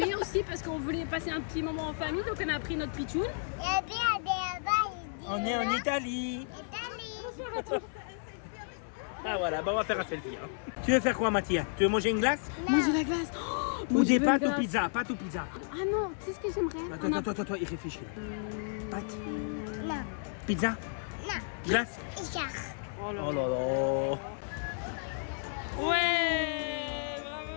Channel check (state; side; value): silent; right; 56 dB below the other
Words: aussi parce qu'on voulait passer un petit moment en famille, donc on a pris notre pitchoun. On est en Italie. Ah voilà, bah on va faire un selfie. Hein. Tu veux faire quoi, Mathia? Tu veux manger une glace? Manger la glace. Oh, ou des pâtes ou pizza? Pâtes ou pizza? Ah non, tu sais ce que j'aimerais? Attends, il réfléchit. Pâtes? Non. Pizza? Non. Glace? Oh là Oh là là. Ouais,